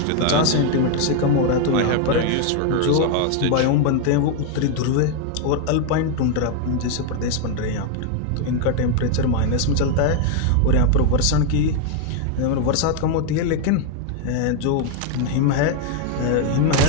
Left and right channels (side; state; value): both; different; correlation 0.00